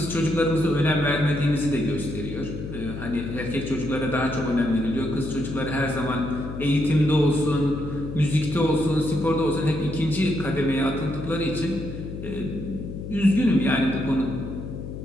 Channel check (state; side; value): noise; left; hum, 8 dB below the sound